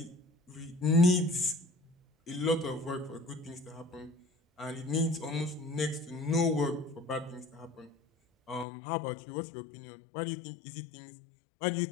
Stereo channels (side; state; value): right; drops out; at 8.7 s